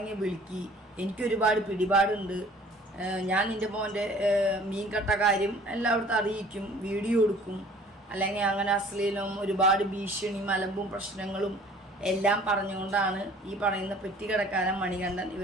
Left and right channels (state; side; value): normal; both; correlation 0.51